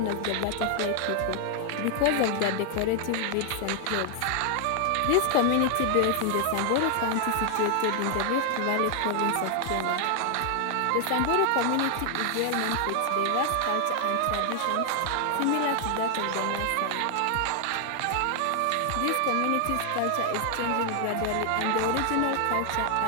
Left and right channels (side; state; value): both; different; correlation 0.00